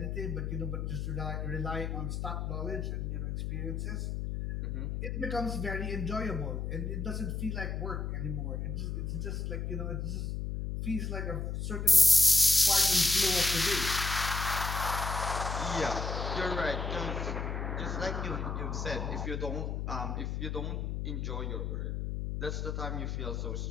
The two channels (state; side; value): noise; left; hum, 2 dB below the sound